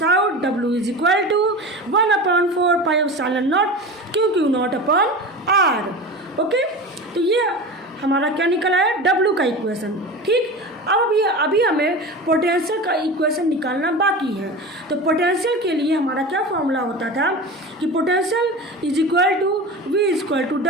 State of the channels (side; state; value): both; normal; correlation 0.30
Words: out w is equal to 1/4πε0 q naught upon r। Okay, तो ये हमारा क्या निकला है? W का इक्वेशन। ठीक, अब अभी हमें पोटेंशियल का इक्वेशन निकालना बाकी है। तो पोटेंशियल के लिए हमारा क्या फॉर्मूला होता था कि potential is equal to V equal to